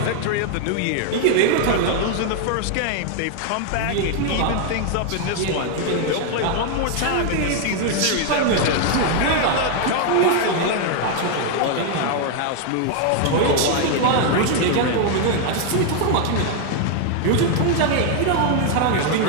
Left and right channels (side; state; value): both; different; correlation 0.00